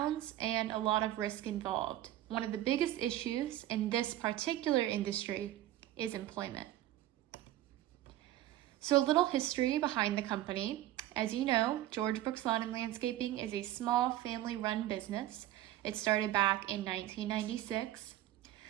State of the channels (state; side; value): quieter; left; 14.0 dB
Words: and a lot of risk involved. One of the biggest issues in this particular industry is employment. So a little history behind the company. As you know, George Brooks Lawn and Landscaping is a small family-run business. It started back in 1996.